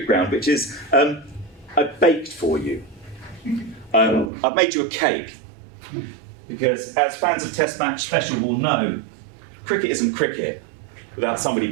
Ground, which is, I've baked for you. I've made you a cake, because as fans of Test Match Special will know, cricket isn't cricket without somebody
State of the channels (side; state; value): left; drops out; at 4.3 s